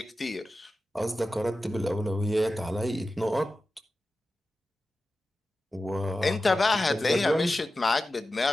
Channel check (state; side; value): normal; both; correlation 0.93